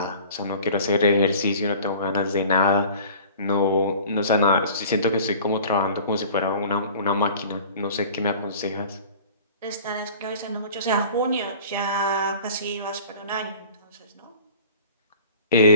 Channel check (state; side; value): inverted; both; correlation -0.43